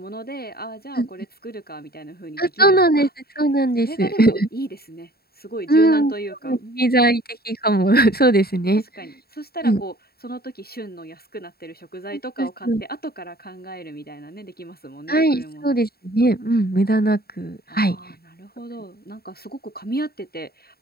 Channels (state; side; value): late; right; 0.45 ms